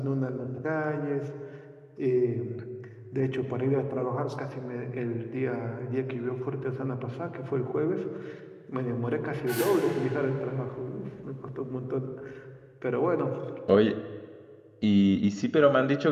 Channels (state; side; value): identical; both; correlation 1.00